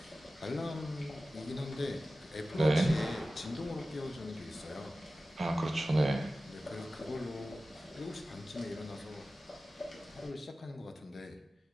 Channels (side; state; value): both; normal; correlation 0.95